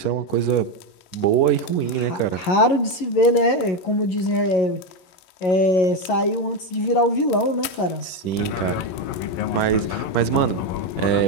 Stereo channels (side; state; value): right; late; 11 ms